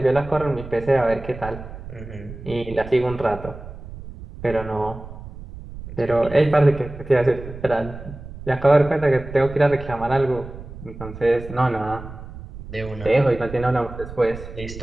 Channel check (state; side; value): noise; right; rumble, 13 dB below the sound